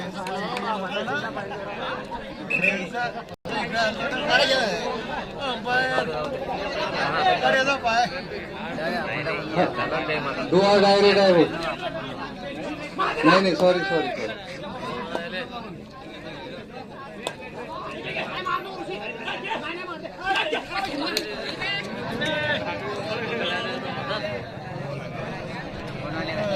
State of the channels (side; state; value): both; identical; correlation 1.00